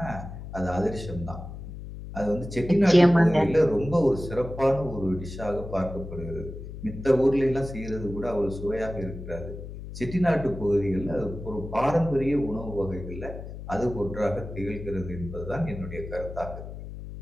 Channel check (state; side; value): noise; left; hum, 11 dB below the sound